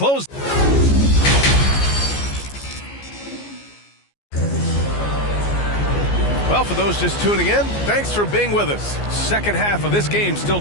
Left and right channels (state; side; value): late; right; 14 ms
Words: Well, for those just tuning in, thanks for being with us. Second half of this game still